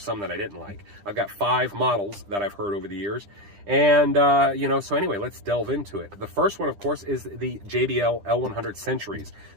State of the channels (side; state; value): left; late; 10 ms